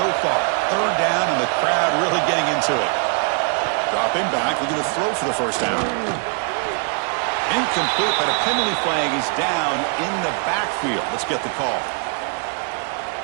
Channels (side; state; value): left; quieter; 39.6 dB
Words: far. 3rd down, and the crowd really getting into it. Dropping back, looking to throw for the first down. Incomplete, but a penalty flag is down in the backfield. Let's get the call.